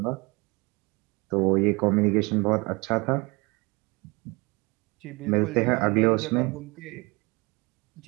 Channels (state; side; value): quieter; left; 26.3 dB